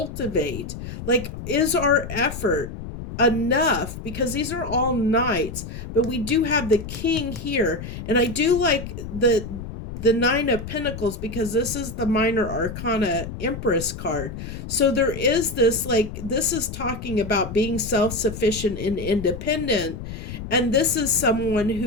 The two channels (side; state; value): left; noise; rumble, 9 dB below the sound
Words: Like, is our effort enough? Because these are all knights, but we do have the king here, and I do like the nine of pentacles because this is the minor arcana empress card. So there is this, like, this is talking about being self-sufficient and independent, and this is someone